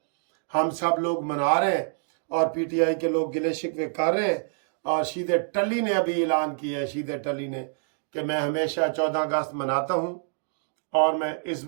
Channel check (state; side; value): silent; left; digital silence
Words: ہم سب لوگ منا رہے ہیں اور پی ٹی آئی کے لوگ گلے شکوے کر رہے ہیں. اور شید ٹلی نے ابھی اعلان کیا ہے، شید ٹلی نے، کہ میں ہمیشہ 14 اگست مناتا ہوں اور میں اس